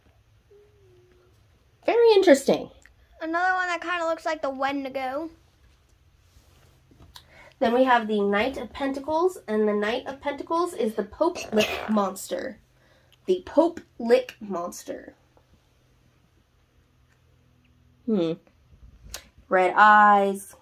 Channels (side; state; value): both; identical; correlation 1.00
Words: Very interesting. Another one that kind of looks like the Wendigo. Then we have the Knight of Pentacles, and the Knight of Pentacles is the Pope Lick Monster. The Pope Lick Monster. Red eyes.